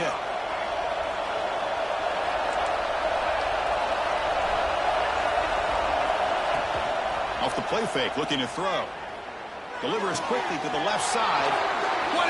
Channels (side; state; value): both; identical; correlation 1.00